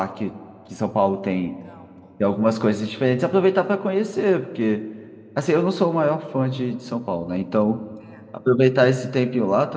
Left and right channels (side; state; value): both; identical; correlation 1.00